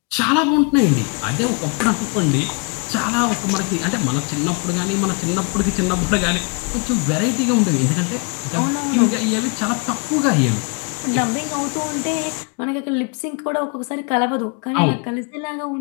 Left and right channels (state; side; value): quieter; right; 34.2 dB